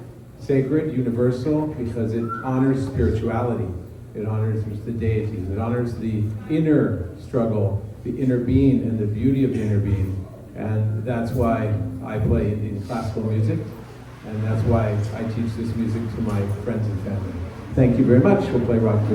universal, because it honors spirituality, it honors the deities, it honors the inner struggle, the inner being, and the beauty of the inner being. And that's why I play Indian classical music, and that's why I teach this music to my friends and family. Thank you very much. We'll play Rag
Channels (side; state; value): both; identical; correlation 1.00